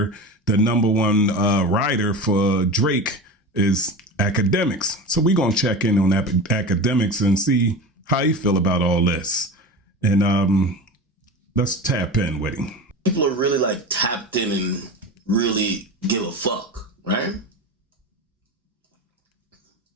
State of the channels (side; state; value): both; normal; correlation 0.28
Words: the number one writer for Drake is Akademiks. So we're going to check in on Akademiks and see how you feel about all this. And let's tap in with him. People are really like tapped in and really give a fuck, right?